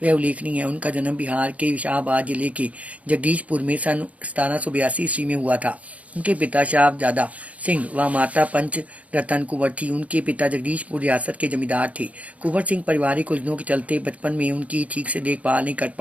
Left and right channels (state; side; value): late; left; 0.067 ms